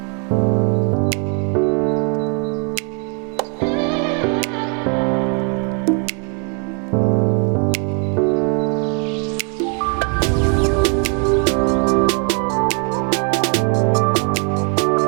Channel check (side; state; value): left; quieter; 39.4 dB